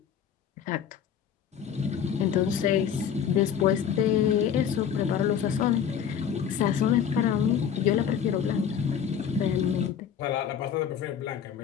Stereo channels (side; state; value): right; quieter; 8.2 dB